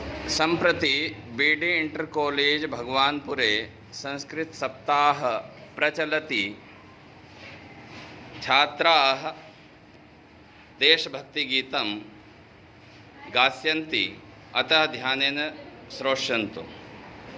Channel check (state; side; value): identical; both; correlation 1.00